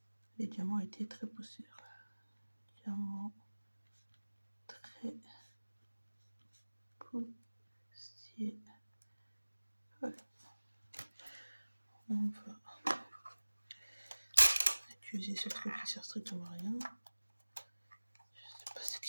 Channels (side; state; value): both; inverted; correlation -1.00